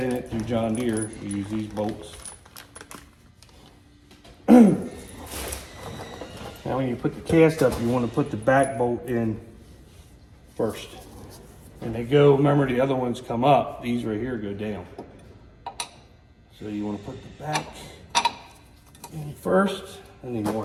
it through John Deere. You use these bolts. Now when you put the cast up, you want to put the back bolt in first. And they go, remember the other ones come up, these right here go down. So you want to put the back in first. I need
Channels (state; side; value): identical; both; correlation 1.00